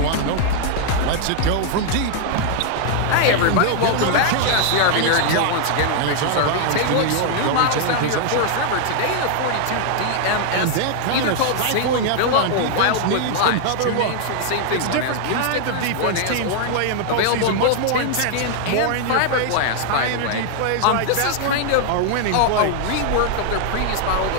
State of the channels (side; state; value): both; different; correlation 0.00